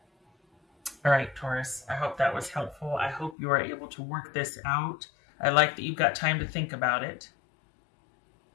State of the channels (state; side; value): drops out; right; at 3.4 s